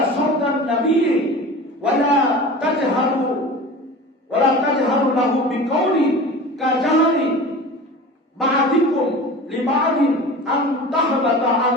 সাওতান নাবিয়্যি ওয়া লা তাজহারু লাহু বিকাউলি কাজাহরি বা'দিকুম লিবা'দিন আন তাহবাতা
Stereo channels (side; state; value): both; normal; correlation 0.36